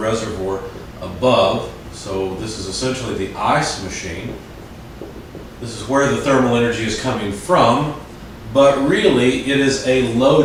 above. So this is essentially the ice machine. This is where the thermal energy is coming from, but really it is a low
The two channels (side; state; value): both; identical; correlation 1.00